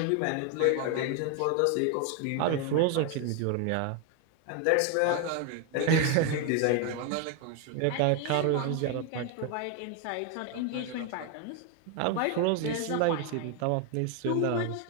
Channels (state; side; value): different; both; correlation 0.01